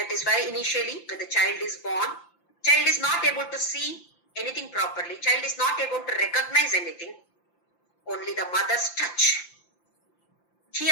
is why initially when the child is born, child is not able to see anything properly. Child is not able to recognize anything. Only the mother's touch.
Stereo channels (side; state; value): right; late; 5.8 ms